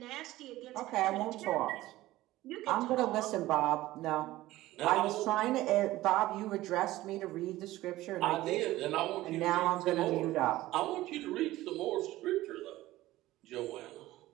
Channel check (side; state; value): left; quieter; 16.6 dB